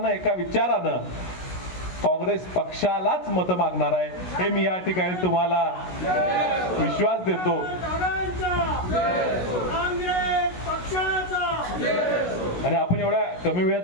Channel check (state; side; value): late; right; 16 ms